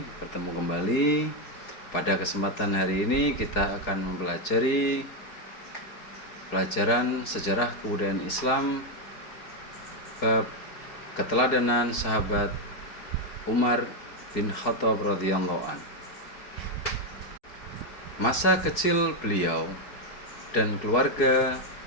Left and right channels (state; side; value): late; right; 4.8 ms